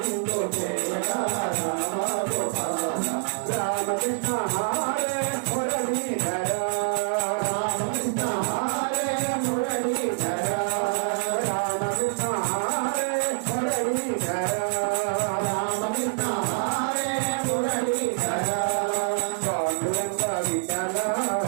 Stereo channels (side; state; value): left; silent; digital silence